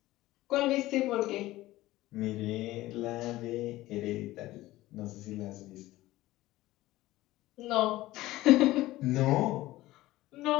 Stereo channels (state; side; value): quieter; right; 17.1 dB